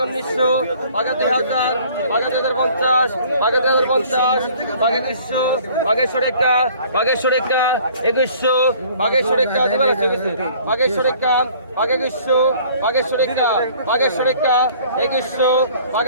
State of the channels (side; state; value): both; inverted; correlation -0.53